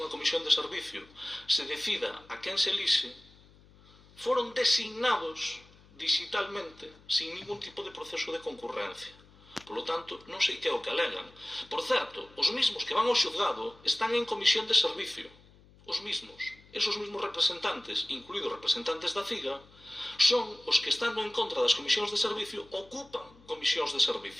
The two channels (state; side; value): noise; left; hum, 26 dB below the sound